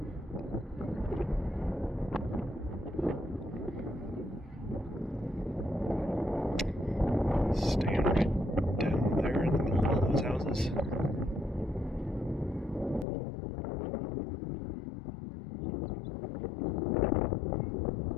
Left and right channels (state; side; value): drops out; right; at 13.1 s